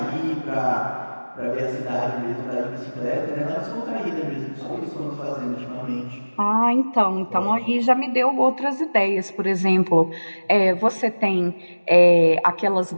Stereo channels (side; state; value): both; inverted; correlation -1.00